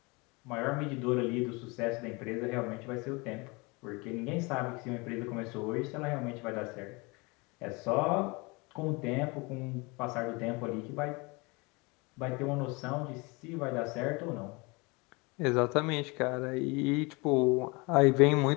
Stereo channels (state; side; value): quieter; right; 27.2 dB